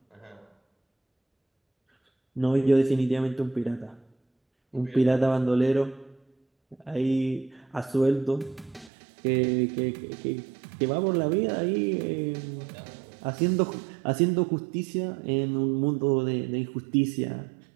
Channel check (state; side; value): drops out; left; at 8.9 s